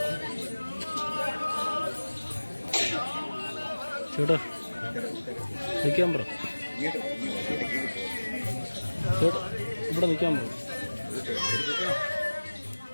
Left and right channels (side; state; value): both; inverted; correlation -1.00